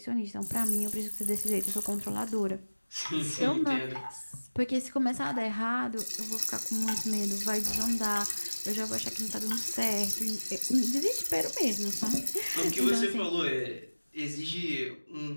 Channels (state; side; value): inverted; both; correlation -1.00